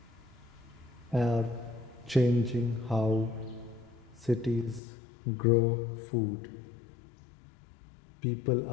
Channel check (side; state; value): right; drops out; at 4.8 s